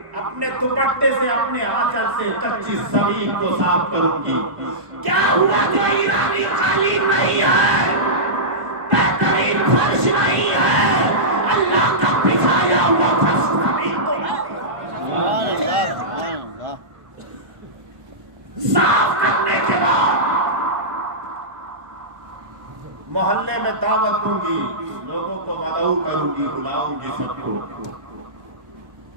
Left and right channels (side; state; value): left; late; 1.1 ms